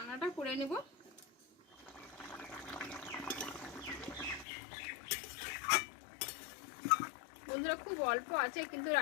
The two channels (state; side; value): drops out; right; at 4.5 s